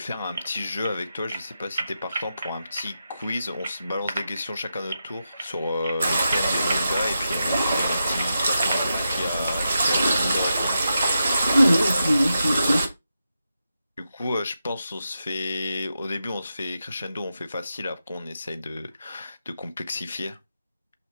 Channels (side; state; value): both; inverted; correlation -0.88